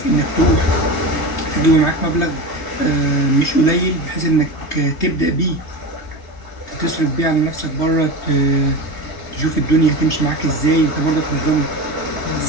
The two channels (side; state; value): right; late; 3.3 ms